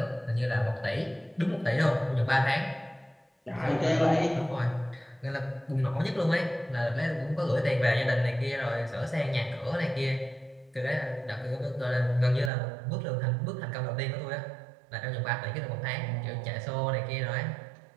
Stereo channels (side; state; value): left; drops out; at 12.5 s